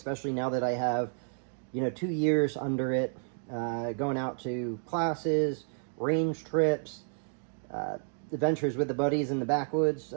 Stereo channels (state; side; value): silent; left; digital silence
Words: now that I have, 2 years under it. Going out to classes, range trips, adventures with the buddies in the backwoods